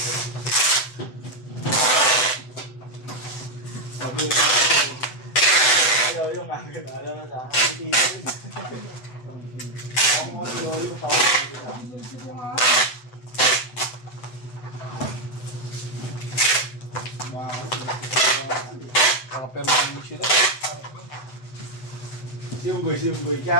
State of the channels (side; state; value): right; late; 7.9 ms